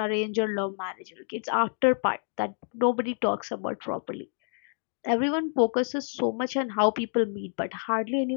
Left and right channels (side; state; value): right; silent; digital silence